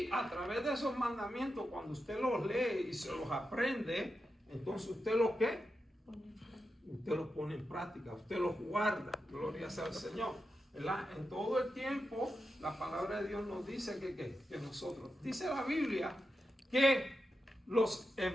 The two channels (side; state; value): both; normal; correlation 0.89